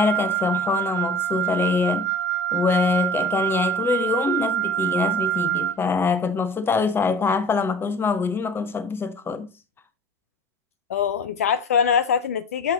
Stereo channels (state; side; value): normal; both; correlation 0.43